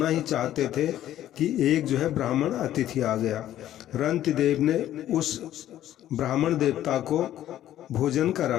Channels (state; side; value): quieter; right; 12.5 dB